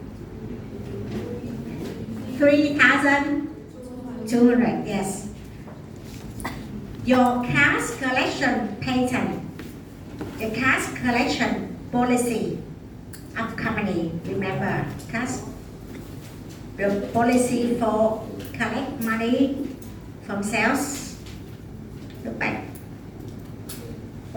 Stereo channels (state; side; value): identical; both; correlation 1.00